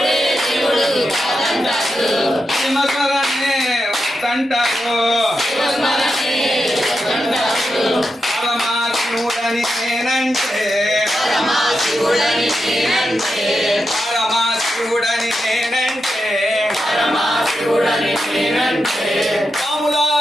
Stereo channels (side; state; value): both; normal; correlation 0.87